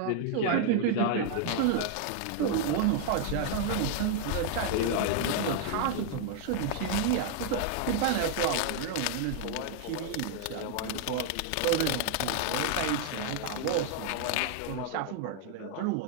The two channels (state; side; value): different; both; correlation 0.00